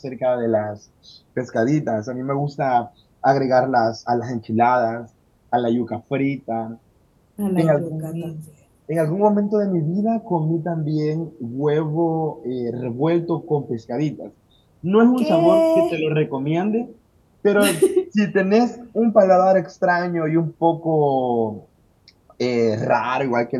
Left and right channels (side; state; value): both; identical; correlation 1.00